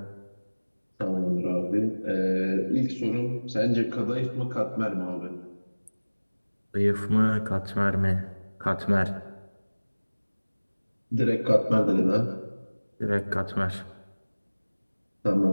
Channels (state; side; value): inverted; both; correlation -1.00